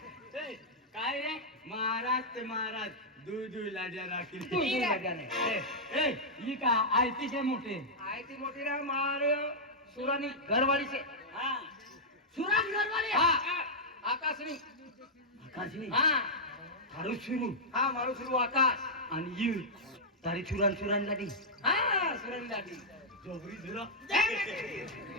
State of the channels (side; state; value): both; normal; correlation -0.08